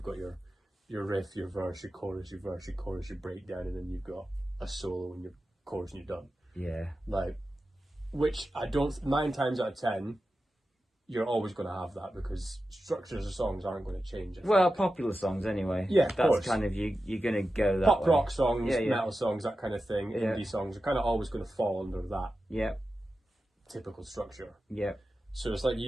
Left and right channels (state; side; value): normal; both; correlation 0.92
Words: got your riff, your verse, your chorus, your verse, your chorus, your breakdown, and then you've got a solo and your chorus and you're done. Yeah. Like, which I don't. 9 times out of 10, you're always going to have that because structures of songs aren't going to change. Well, popular songs anyway. Yeah, of that's course. kind of you're going to go that pop way. rock songs, metal songs, that kind of thing. Yeah. Indie songs are kind of always going to fall under that. Yeah. Typical structure. Yeah. So it's like